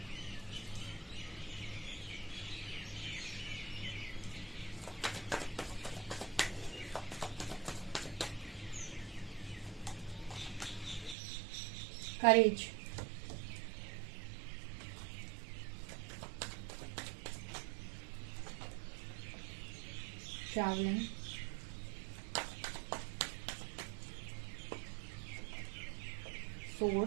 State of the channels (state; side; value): drops out; left; at 11.2 s